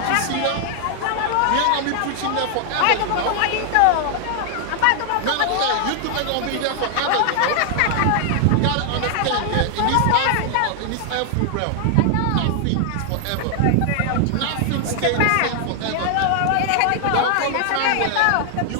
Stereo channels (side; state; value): both; different; correlation 0.00